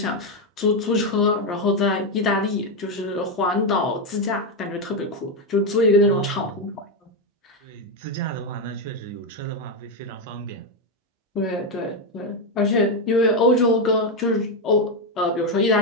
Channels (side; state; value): both; normal; correlation 0.06